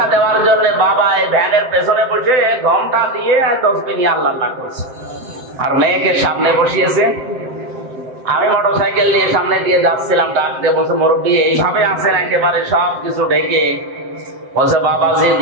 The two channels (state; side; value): late; left; 7.8 ms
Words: দেওয়ার জন্য বাবা এই ভ্যানের পেছনে বসে ঘন্টা দিয়ে 10 মিনিট আল্লাহ করছে, আর মেয়েকে সামনে বসিয়েছে। আমি মোটরসাইকেল নিয়ে সামনে দিয়ে যাচ্ছিলাম, ডাক দিয়ে বলছে, মুরব্বী এইভাবে আছেন একেবারে সব কিছু ঢেকে? বলছে, বাবাজি